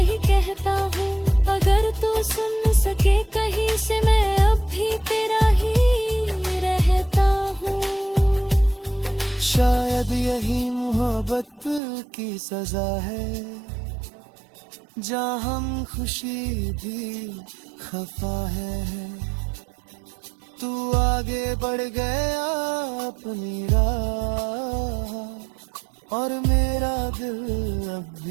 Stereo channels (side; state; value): left; drops out; at 11.8 s